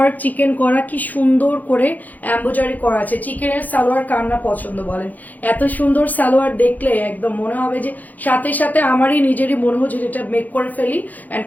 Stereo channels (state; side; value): late; right; 0.081 ms